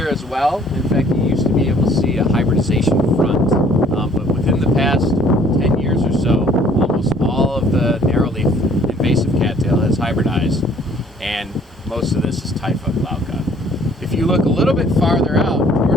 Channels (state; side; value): normal; both; correlation 0.58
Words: as well. In fact, you used to be able to see a hybridization front, but within the past 10 years or so, almost all of the narrowleaf invasive cattail has hybridized, and most of this is Typha glauca. If you look a little bit farther out